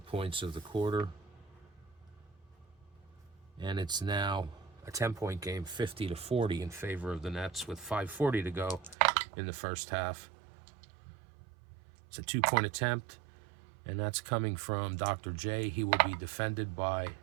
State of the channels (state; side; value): drops out; left; at 9.0 s